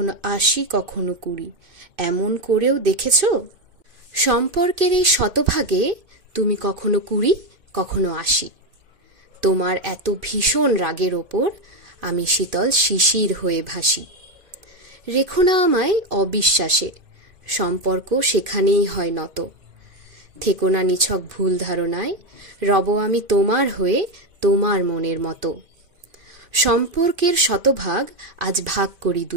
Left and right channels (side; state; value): left; late; 2.5 ms